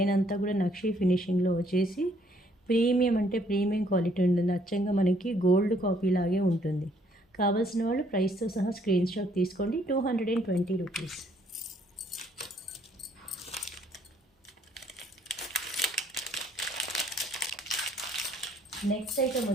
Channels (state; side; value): normal; both; correlation 0.65